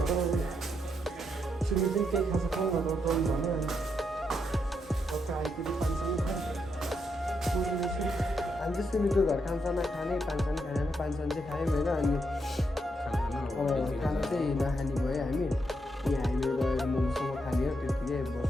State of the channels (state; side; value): normal; both; correlation 0.80